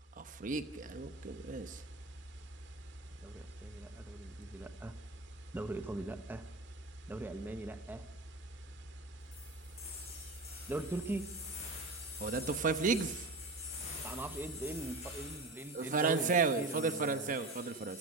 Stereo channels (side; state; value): left; quieter; 3.0 dB